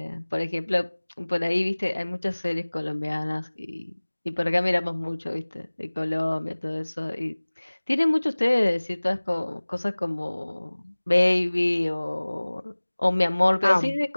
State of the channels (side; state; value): both; inverted; correlation -1.00